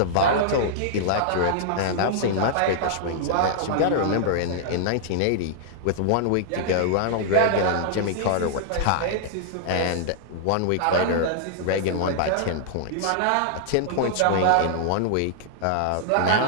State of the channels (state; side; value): different; both; correlation -0.01